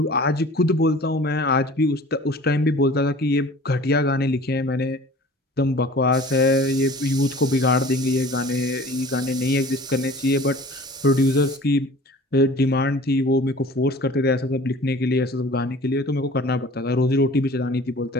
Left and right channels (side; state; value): both; normal; correlation 0.45